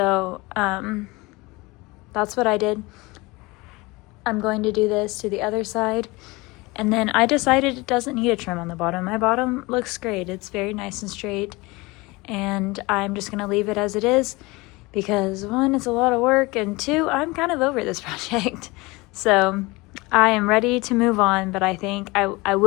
that's what I did. I'm going to do this to the other side. And then I decided it doesn't need a trim on the bottom. My bottom looks great. It's very nice and straight. And I'm just going to leave it as it is because one, it's a lot of work, and two, I'm kind of over this project. So I am ready to move on, but I think I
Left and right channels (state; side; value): quieter; right; 23.5 dB